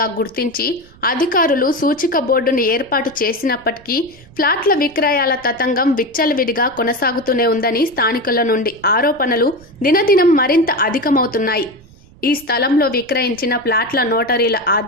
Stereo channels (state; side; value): noise; right; rumble, 25 dB below the sound